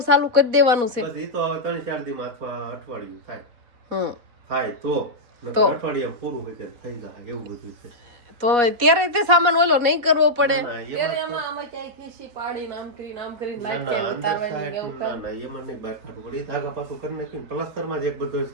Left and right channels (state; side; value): late; left; 4.2 ms